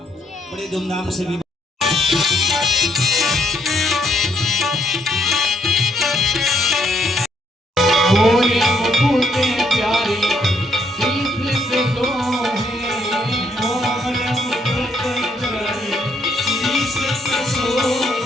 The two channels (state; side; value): normal; both; correlation 0.72